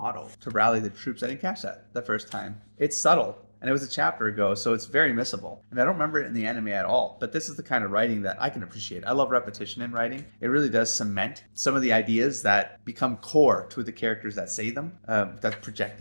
to rally the troops. I didn't catch that the first time. It's subtle, and it was a chapter ago, so it's very missable, and I don't remember it in the anime at all. But this is the kind of writing that I can appreciate. I love repetition in writing. It really does cement some of the ideas that become core to the characters that say them, that project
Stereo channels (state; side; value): inverted; both; correlation -1.00